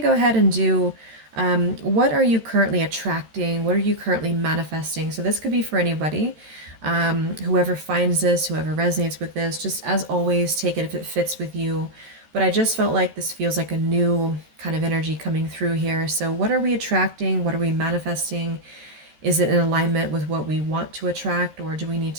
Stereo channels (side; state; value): left; late; 13 ms